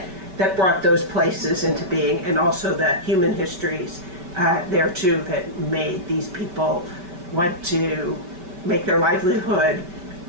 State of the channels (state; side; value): late; left; 5.3 ms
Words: brought those places into being, and also the human histories there too that made these people want to make their livelihood